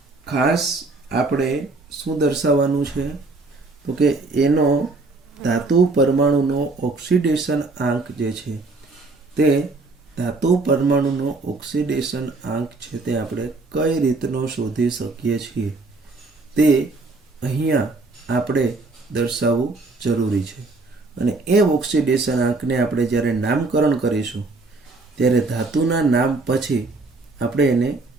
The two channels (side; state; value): left; quieter; 3.5 dB